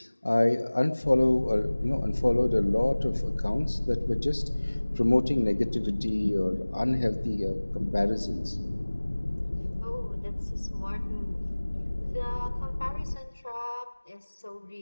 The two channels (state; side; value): inverted; both; correlation -1.00